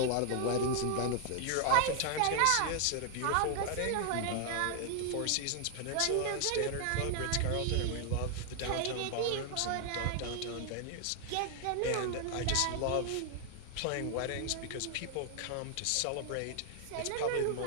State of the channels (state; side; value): different; both; correlation 0.00